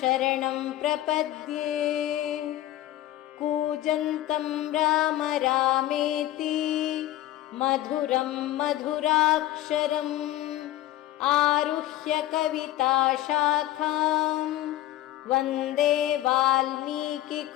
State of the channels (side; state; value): right; quieter; 14.5 dB